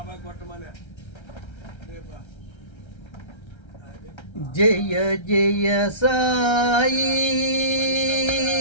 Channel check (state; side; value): late; right; 1.3 ms